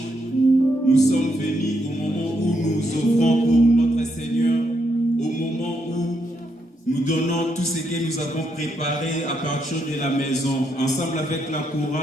Nous sommes venus au moment où nous offrons pour notre Seigneur, au moment où nous donnons tout ce que nous avons préparé à partir de la maison. Ensemble avec la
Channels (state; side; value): normal; both; correlation 0.78